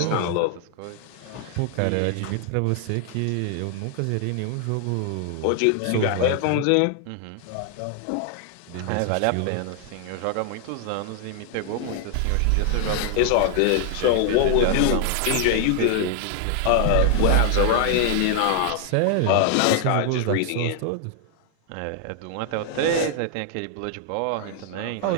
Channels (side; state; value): both; different; correlation 0.00